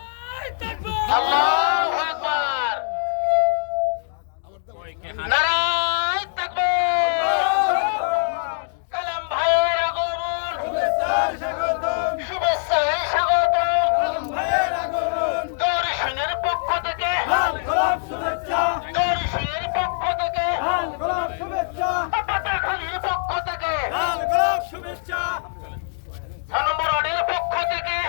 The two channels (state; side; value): silent; right; digital silence